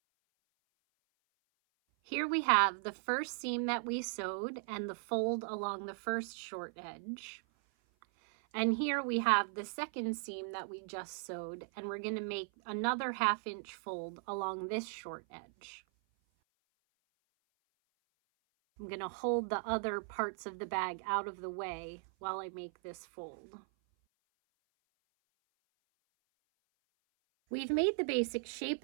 Here we have the first seam that we sewed and the fold along the first short edge. And here we have the second seam that we just sewed, and we're going to make another 1/2 inch fold along this short edge. I'm going to hold the other parts of the bag out of the way while I make this fold. We've made the basic shape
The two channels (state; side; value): silent; left; 53 dB below the other